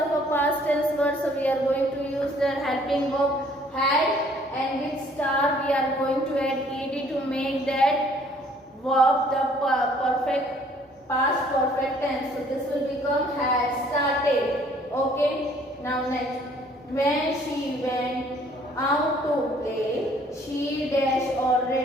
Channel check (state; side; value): normal; both; correlation 0.59